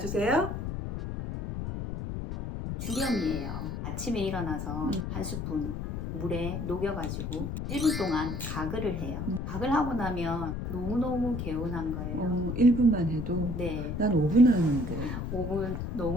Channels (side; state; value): left; noise; rumble, 4 dB below the sound